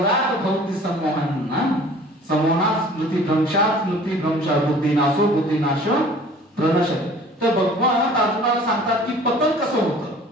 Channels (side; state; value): both; normal; correlation 0.48